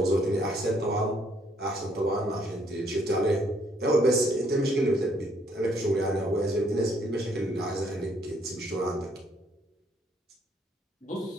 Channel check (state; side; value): normal; both; correlation 0.68